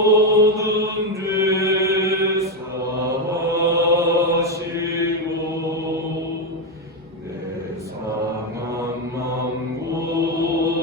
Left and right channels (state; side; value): normal; both; correlation 0.08